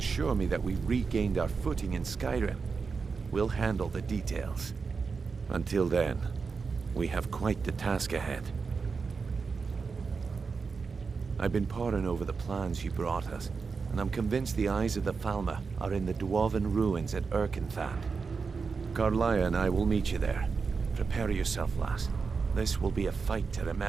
me that we've regained our footing in Skyrim, we'll handle the details. Until then, we have quite the task ahead. I've been poring over the plans you brought us, and I'm convinced the eyes of the Falmer are in the dwarven ruins at Erkenthand. Carlia and I will meet you there. Prepare yourself, lass. This will be a fight to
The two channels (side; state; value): left; quieter; 5.0 dB